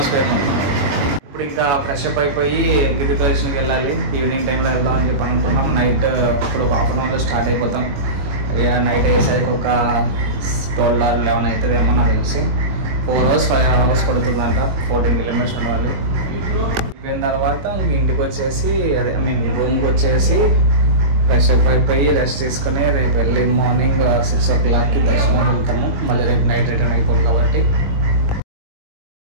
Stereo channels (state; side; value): late; left; 21 ms